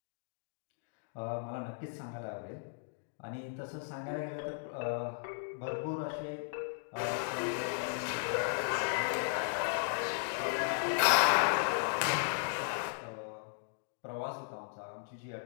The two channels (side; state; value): right; silent; digital silence